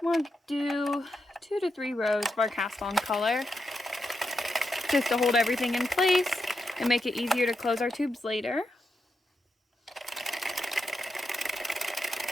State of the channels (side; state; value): both; normal; correlation 0.85